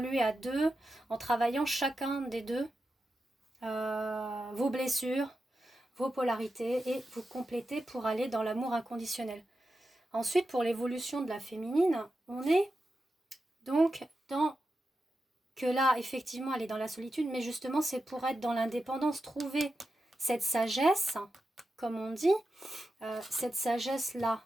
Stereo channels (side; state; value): both; normal; correlation 0.90